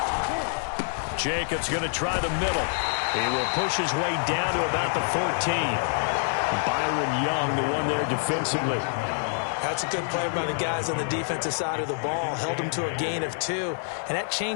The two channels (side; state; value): right; silent; 58 dB below the other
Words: Jacobs going to try the middle. He will push his way down to about the 14. Byron Young, the one there defensively. That's a good play by the guys on the defensive side of the ball. Held him to a gain of 2. And that